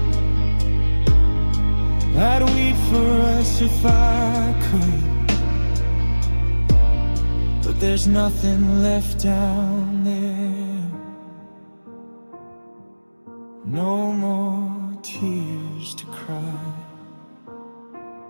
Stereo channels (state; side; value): inverted; both; correlation -1.00